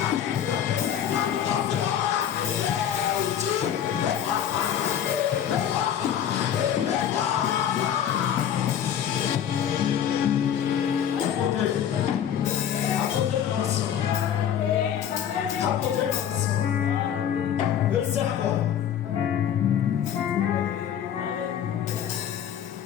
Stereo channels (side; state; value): right; quieter; 9.4 dB